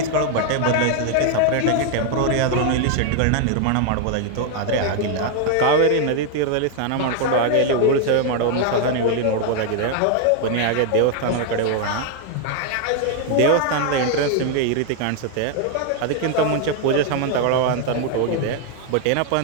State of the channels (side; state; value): both; different; correlation 0.00